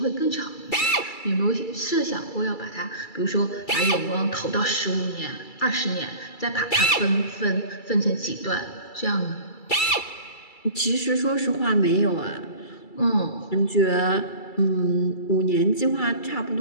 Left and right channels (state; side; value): late; right; 2.3 ms